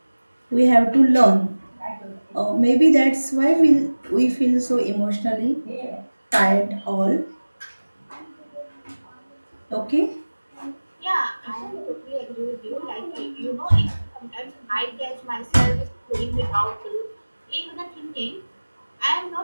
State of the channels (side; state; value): both; inverted; correlation -1.00